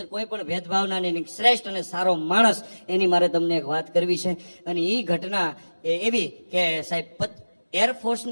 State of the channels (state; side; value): inverted; both; correlation -1.00